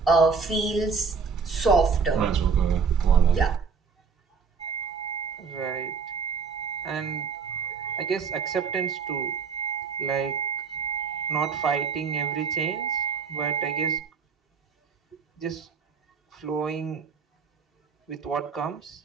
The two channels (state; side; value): quieter; left; 5.6 dB